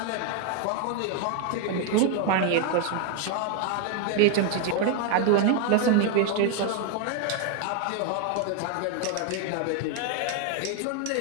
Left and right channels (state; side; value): different; both; correlation 0.01